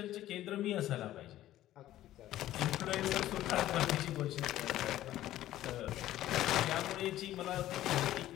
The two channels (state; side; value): quieter; right; 13.9 dB